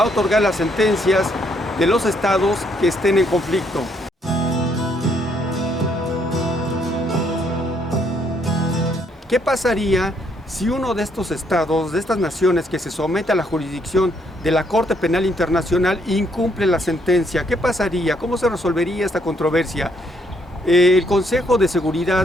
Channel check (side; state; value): both; normal; correlation 0.70